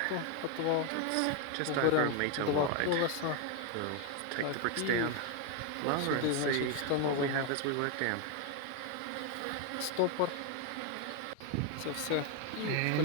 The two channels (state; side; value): different; both; correlation 0.01